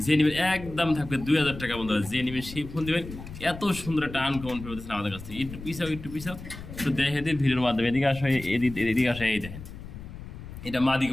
যে নেবেন একদম থাকবে 2000 টাকা বন্ধুরা যে নেবেন সেই ফোন দেবেন এত সুন্দর একটা আনকমন পেয়েছেন আমাদের কাছে। একটু পিছাও একটু দেখে দিন ভিডিওর মাধ্যমে এদিকে আসা এদিকে আসা এই দেখেন এটা মাদি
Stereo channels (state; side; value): noise; left; rumble, 13 dB below the sound